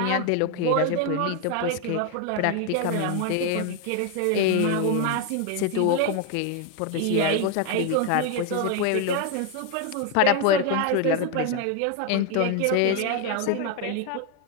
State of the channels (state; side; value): different; both; correlation 0.01